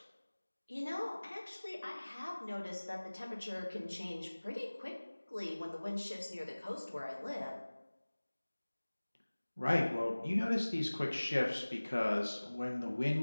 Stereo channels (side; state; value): both; inverted; correlation -1.00